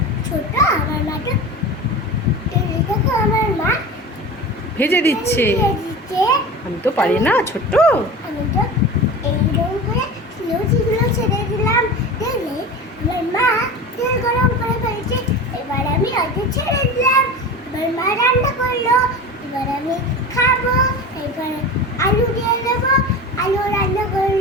ছোট, আমার মা তো দেখো আমার মা ভেজে দিচ্ছে। আমি তো পারি না, ছোট্ট। আমি তো এইরকম করে লুচিগুলো ছেড়ে দিলাম। দেখলে আমার মা তেল গরম করে ফেলছে। এবার আমি অল্প ছেড়ে দিলাম। এবার মা রান্না করলো, এবার আমি খাবো। এবার আলু দিয়ে দেবো, আলু রান্না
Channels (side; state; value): both; normal; correlation 0.31